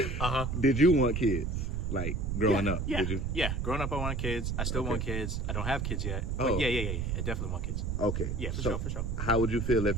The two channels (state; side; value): noise; right; rumble, 1 dB below the sound